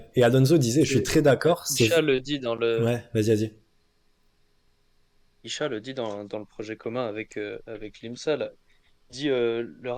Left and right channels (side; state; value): both; identical; correlation 1.00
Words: Et Alonso disait, je suis Et très d'accord. C'est. Isha le dit dans le Ouais. Vas-y, vas-y. Isha le dit dans le projet commun avec l'IMSA, là. Il dit le